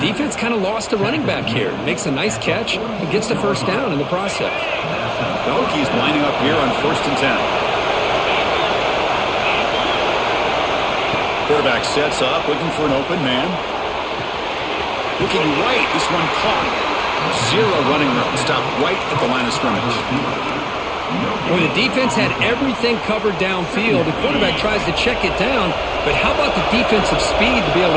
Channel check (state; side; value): identical; both; correlation 1.00